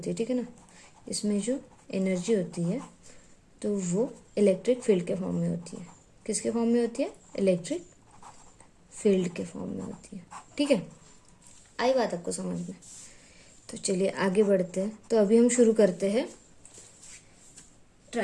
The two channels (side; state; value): both; identical; correlation 1.00